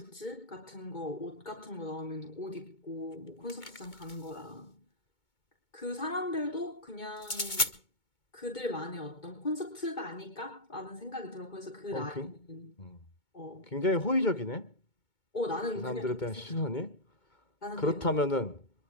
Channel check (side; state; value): right; late; 2.2 ms